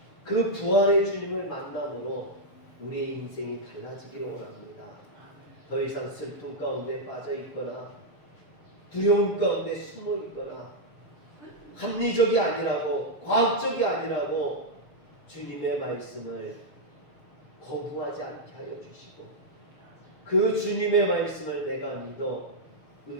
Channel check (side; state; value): right; late; 6.9 ms